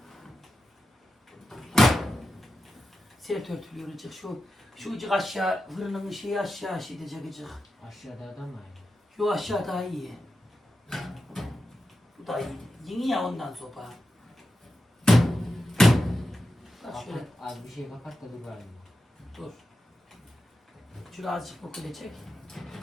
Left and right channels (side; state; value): both; normal; correlation 0.91